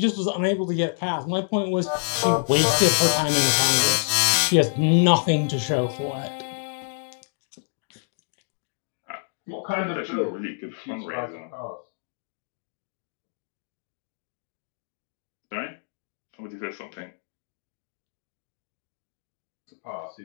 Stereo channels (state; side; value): silent; right; digital silence